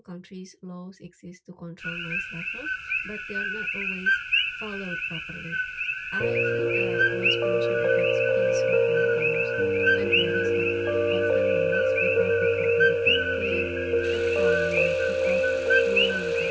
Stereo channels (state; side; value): identical; both; correlation 1.00